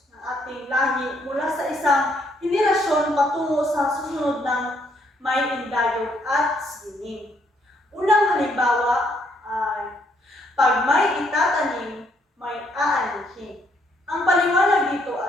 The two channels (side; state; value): both; normal; correlation 0.70